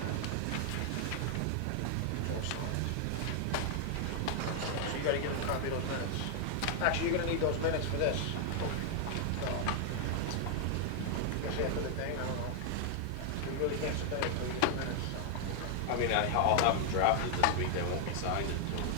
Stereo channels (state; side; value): different; both; correlation 0.00